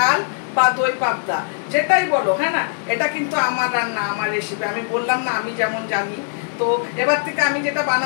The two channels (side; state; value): right; silent; digital silence